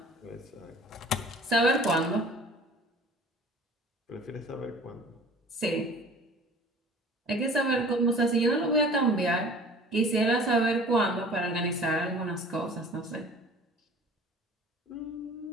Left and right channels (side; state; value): both; normal; correlation 0.46